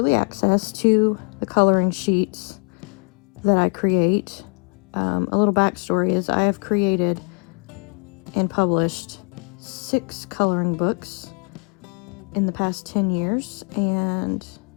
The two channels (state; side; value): quieter; right; 35.4 dB